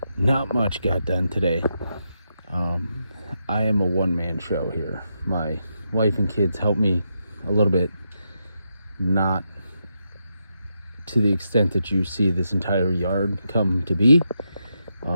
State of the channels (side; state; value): both; inverted; correlation -0.83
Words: Not much got done today. I am a one-man show here. My wife and kids help me a little bit, not to the extent that you see this entire yard come to be.